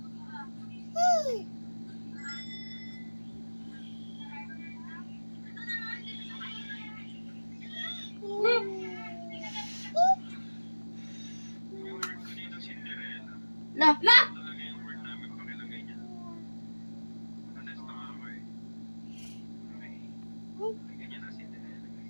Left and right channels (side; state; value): both; inverted; correlation -1.00